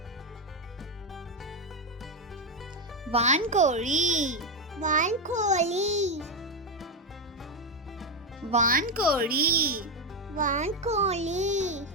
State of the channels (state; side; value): normal; both; correlation 0.07